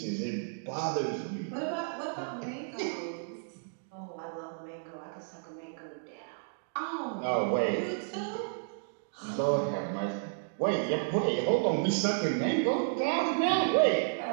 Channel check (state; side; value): silent; left; digital silence